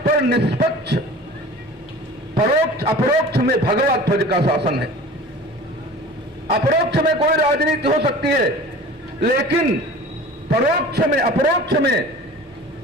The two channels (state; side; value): normal; both; correlation 0.41